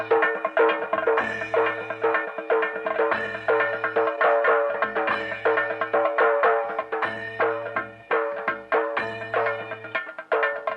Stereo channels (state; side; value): identical; both; correlation 1.00